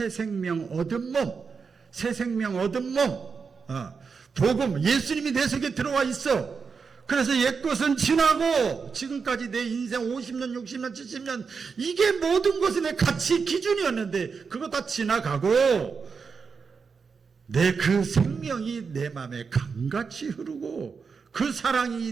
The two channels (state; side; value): quieter; left; 5.4 dB